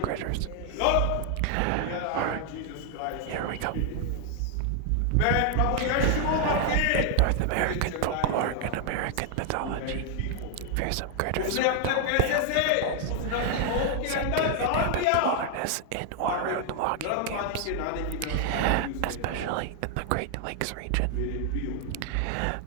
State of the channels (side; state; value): both; different; correlation 0.00